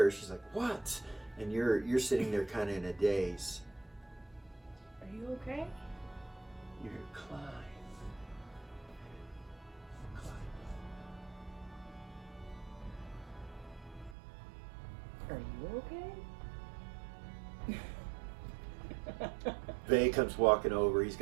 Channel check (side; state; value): left; drops out; at 14.2 s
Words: her, she's like, what? And you're sitting there kind of in a daze. Are you okay? You hear climb. Are you okay? Vay comes walking over. He's